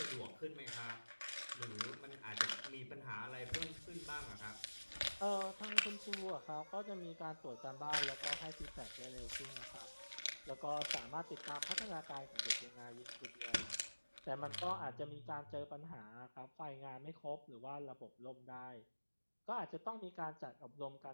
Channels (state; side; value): inverted; both; correlation -1.00